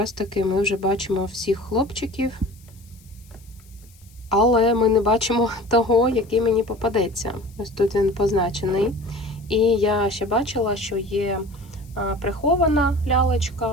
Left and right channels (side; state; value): left; noise; hiss, 28 dB below the sound